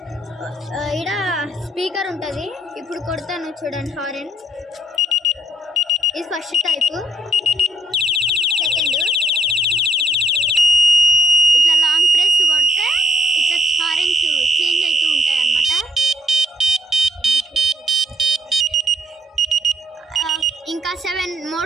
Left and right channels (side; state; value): both; normal; correlation 0.69